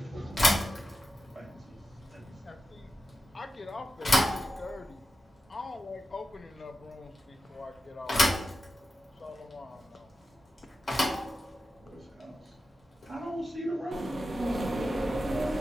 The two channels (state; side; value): normal; both; correlation 0.92